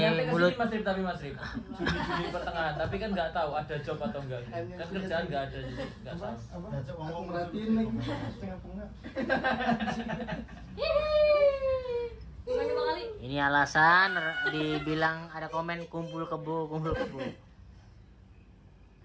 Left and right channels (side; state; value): both; identical; correlation 1.00